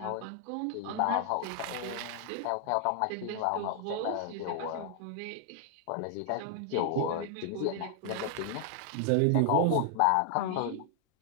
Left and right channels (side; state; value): both; different; correlation 0.00